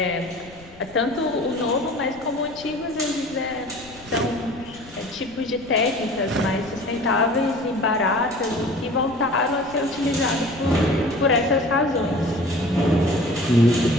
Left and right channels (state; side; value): noise; left; rumble, 22 dB below the sound